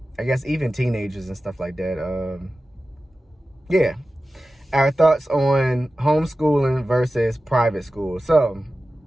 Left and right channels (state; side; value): normal; both; correlation 0.95